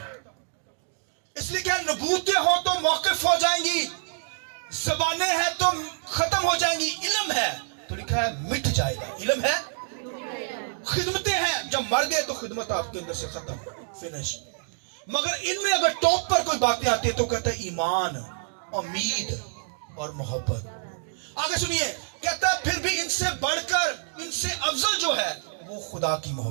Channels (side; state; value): left; silent; digital silence